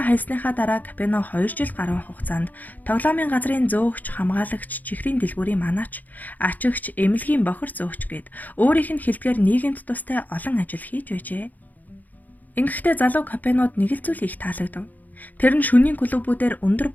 хайсныхаа дараа Капоне 2 жил гаруй хугацаанд тоглоомын газрын зөөгч, хамгаалагч, чихрийн дэлгүүрийн манаач, ачигч, эмнэлгийн бохир зөөгч гээд өөрийнх нь хэлдгээр нийгэмд тустай олон ажил хийж байжээ. Ингэхдээ залуу Капонед нэг л зүйл их таалагдав. Тэр нь шөнийн клубүүдээр өндөр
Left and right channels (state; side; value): late; right; 0.082 ms